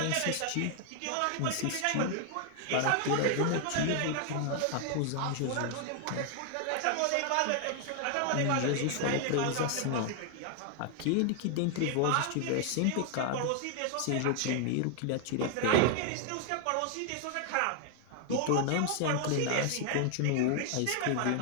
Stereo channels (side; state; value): both; different; correlation 0.00